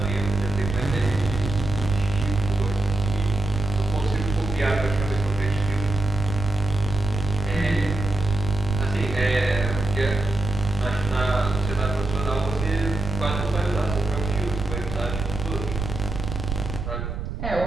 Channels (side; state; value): right; noise; rumble, 5 dB below the sound